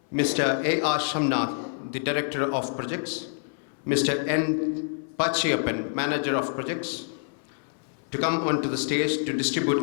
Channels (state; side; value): silent; right; 60 dB below the other